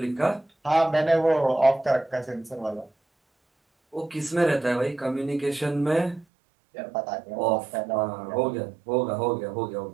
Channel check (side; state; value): left; drops out; at 6.2 s